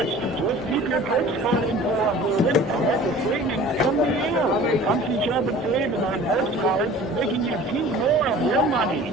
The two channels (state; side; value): normal; both; correlation 0.44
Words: Just keep your Perks card info updated and let the savings come to you. With Pumpkin Shop and Save and our Perks cards, making you keep more of your money.